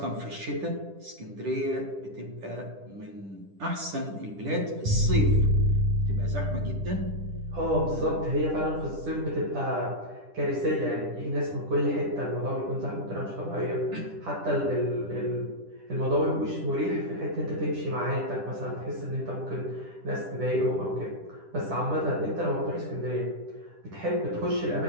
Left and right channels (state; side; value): late; left; 10 ms